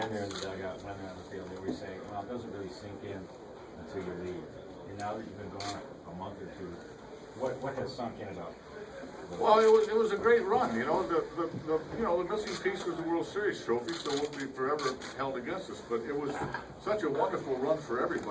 they're in the dugout, when they're on the field, they always say, well, it doesn't really sink in until you leave. And now that you've been gone a month or two, what has sunk in about? Well, it was a great run. You know, the missing piece was the World Series trophy, so it won't be forever held against us. But it was such a wonderful run for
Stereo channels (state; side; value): identical; both; correlation 1.00